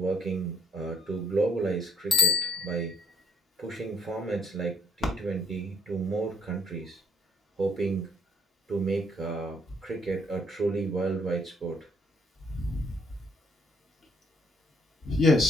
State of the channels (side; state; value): both; normal; correlation 0.68